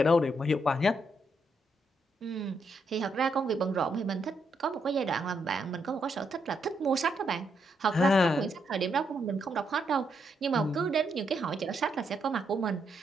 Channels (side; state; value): both; normal; correlation 0.78